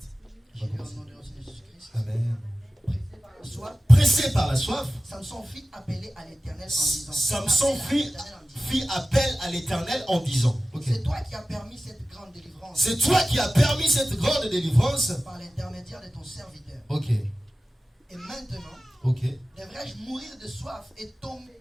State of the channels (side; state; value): both; normal; correlation 0.96